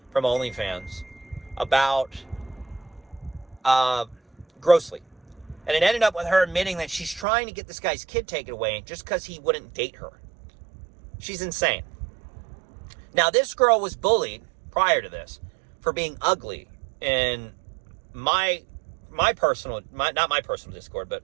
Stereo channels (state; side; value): drops out; left; at 7.2 s